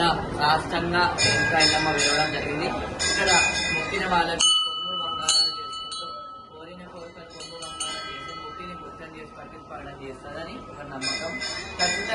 రాష్ట్రంగా ఇంకా ఎల్లమ్మ వెళ్ళడం జరిగింది. ఇక్కడ మొక్కిన వాళ్ళకి కొమ్ము బంగారం చేసుకుంటూ కోరిన కోరికలు కొమ్ము బంగారం చేసి ముట్టిని ముత్యం చేసి పట్టించుకోవడం చేస్తుందని ఒక నమ్మకం.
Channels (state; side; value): identical; both; correlation 1.00